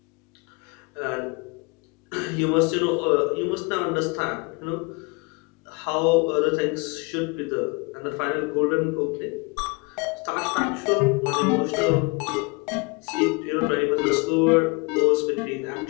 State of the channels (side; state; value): right; quieter; 29.4 dB